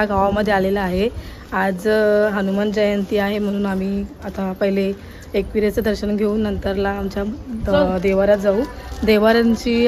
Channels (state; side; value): identical; both; correlation 1.00